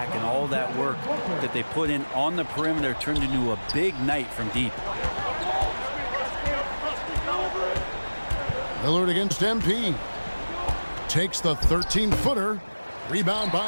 and all that work that they put in on the perimeter turned into a big night from deep. Lillard against MP. Takes the 13-footer. Rebound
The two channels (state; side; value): inverted; both; correlation -1.00